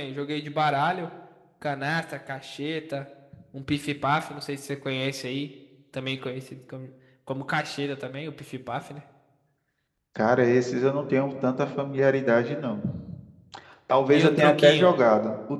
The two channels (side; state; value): both; identical; correlation 1.00